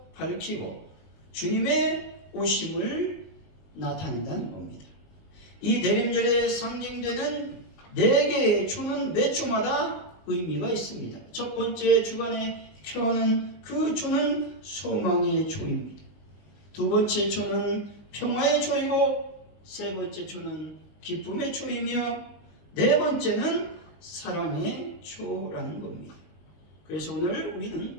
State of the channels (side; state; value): right; late; 20 ms